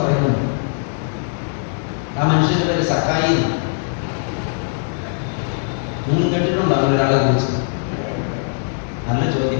ആ മനുഷ്യന്റെ പേര് സക്കായി. നിങ്ങൾ കേട്ടിട്ടുണ്ടോ ഒരാളെ കുറിച്ച്? നല്ല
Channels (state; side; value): silent; right; digital silence